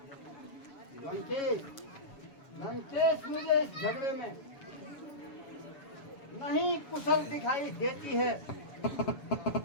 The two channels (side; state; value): right; late; 7.1 ms